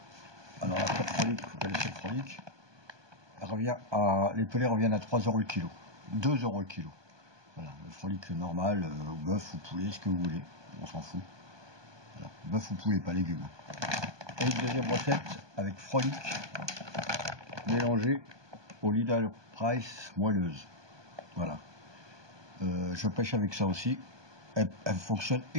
Alors la pure frolic, vous connaissez le frolic, les pelés reviennent à 3 € le kilo, 2 € le kilo. Voilà, le frolic normal, bœuf ou poulet, ce que vous voulez, on s'en fout. Voilà, bœuf ou poulet, pas légumes. Et une deuxième recette avec frolic mélangé au Leader Price moelleuse. Voilà. Je pêche avec ça aussi. Elle fonctionne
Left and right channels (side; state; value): left; late; 1.2 ms